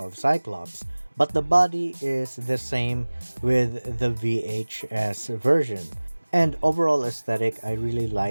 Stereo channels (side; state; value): both; inverted; correlation -1.00